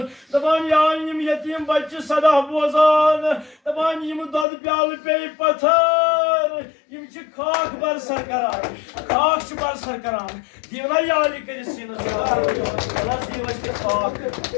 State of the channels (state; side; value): drops out; right; at 4.5 s